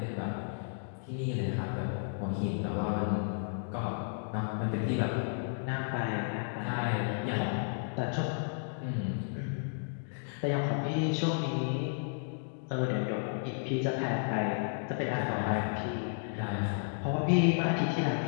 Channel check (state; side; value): silent; right; digital silence